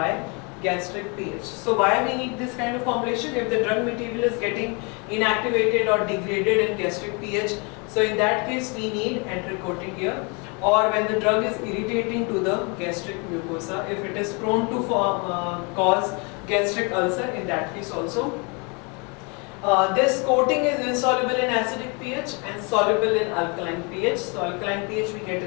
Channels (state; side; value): quieter; right; 32.0 dB